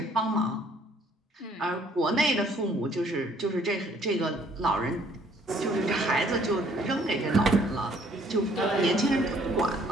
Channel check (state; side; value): normal; both; correlation 0.62